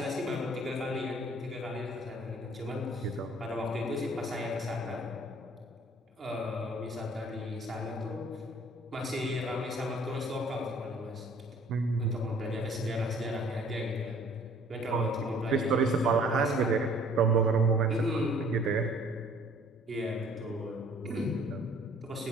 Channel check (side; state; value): both; normal; correlation 0.55